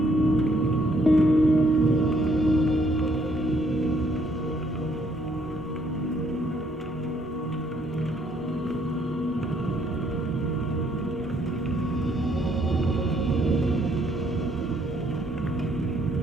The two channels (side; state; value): both; normal; correlation 0.68